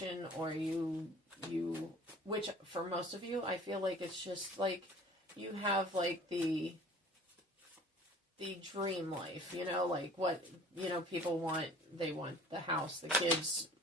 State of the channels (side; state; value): both; normal; correlation 0.49